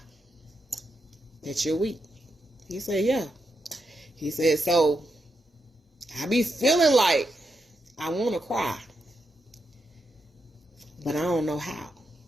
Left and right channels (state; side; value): normal; both; correlation 0.84